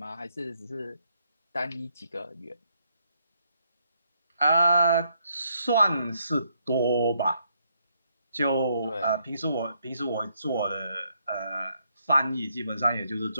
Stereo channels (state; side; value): inverted; both; correlation -0.74